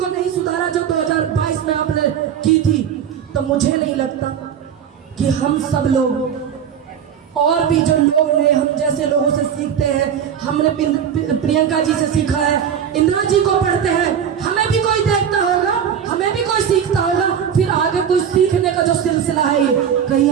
नहीं सुधारा जो 2022 में आपने की थी, तो मुझे नहीं लगता कि हम सब लोग और भी जो लोग ने हम जैसे लोगों से सीखते हैं, हमने प्रियंका जी से सीखा है, इंदिरा जी को पढ़ते हैं, हमें भी कोई देखता होगा, हमें भी कोई सीखता होगा, फिर आगे कोई सीखने का जो सिलसिला है ये कहीं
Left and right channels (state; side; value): quieter; left; 8.4 dB